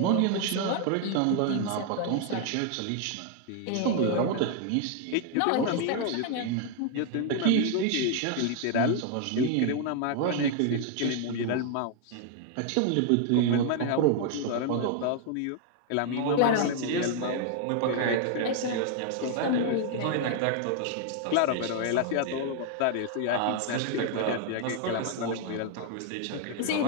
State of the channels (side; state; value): both; different; correlation 0.00